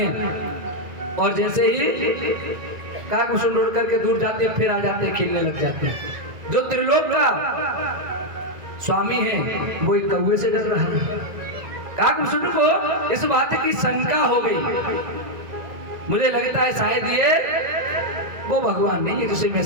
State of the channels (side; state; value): left; late; 2.0 ms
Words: और जैसे ही काकभूषुंड उड़ करके दूर जाते हैं, फिर आ जाते हैं, खेलने लग जाते हैं। जो त्रिलोक का स्वामी है वो एक कौवे से डर रहा है। काकभूषुंड को इस बात की शंका हो गई, मुझे लगता है शायद ये वो भगवान नहीं है जिसे मैं